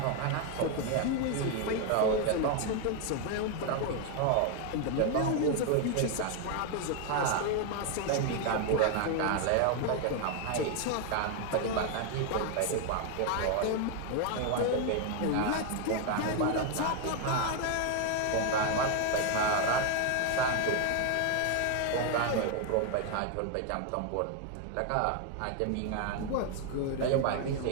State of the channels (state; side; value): different; both; correlation 0.01